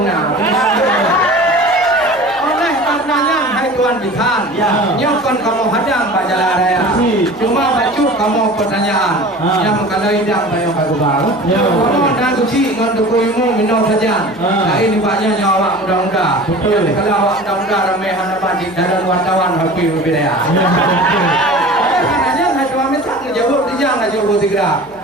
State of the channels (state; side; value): noise; left; hum, 27 dB below the sound